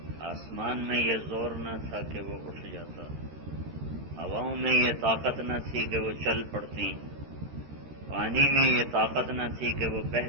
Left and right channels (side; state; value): left; late; 13 ms